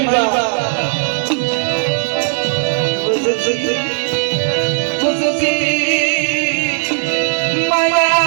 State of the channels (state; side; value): silent; left; 57 dB below the other